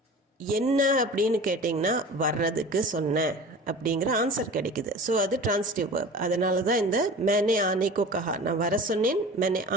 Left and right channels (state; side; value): normal; both; correlation 0.38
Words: என்ன அப்படின்னு கேட்டிங்கன்னா வர்றதுக்கு சொன்னேன் அப்படிங்கிற ஆன்சர் கிடைக்குது. ஸோ அது டிரான்சிட்டிவ் வேர்ப். அதனால தான் இந்த மேனே ஆனேக்கோ கஹா, நான் வர சொன்னேன், மேனே